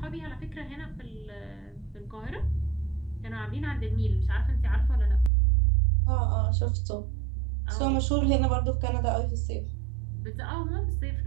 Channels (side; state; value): left; drops out; at 5.3 s